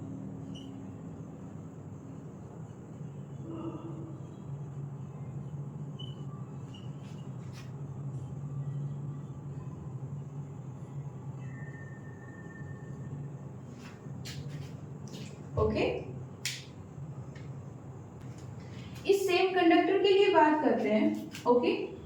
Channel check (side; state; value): both; identical; correlation 1.00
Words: ओके, इस सेम कंडक्टर के लिए बात करते हैं। ओके,